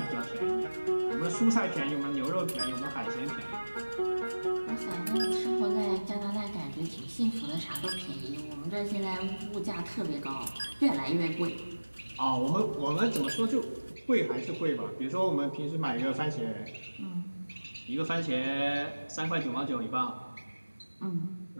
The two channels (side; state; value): both; inverted; correlation -1.00